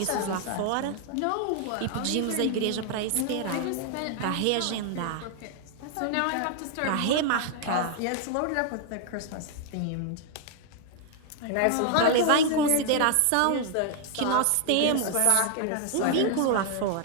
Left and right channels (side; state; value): both; different; correlation 0.00